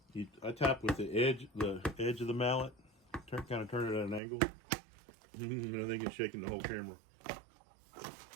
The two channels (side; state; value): left; drops out; at 4.2 s